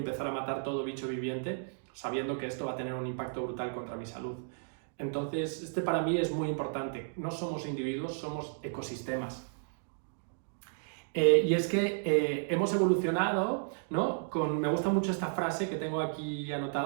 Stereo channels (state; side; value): silent; left; digital silence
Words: a matar todo bicho viviente, sabiendo que esto va a tener un impacto brutal contra mi salud. Entonces, para mí es muy importante. No somos individuos, somos ecosistemas. Y es que hemos evolucionado, ¿no? Me gusta mucho esta frase que tengo aquí